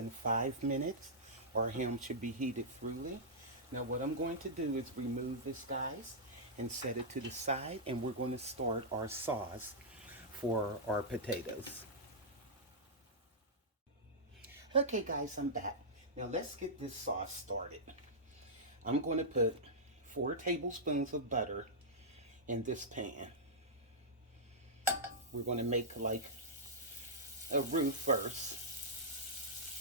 5 minutes. Our ham should be heated thoroughly. Now what I'm going to do is remove this, guys, and set it to the side. And we're going to start our sauce for our potatoes. Okay, guys, I'm back. Now let's get this sauce started. I'm going to put 4 tablespoons of butter in this pan. We're going to make like a roux first.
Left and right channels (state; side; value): normal; both; correlation -0.11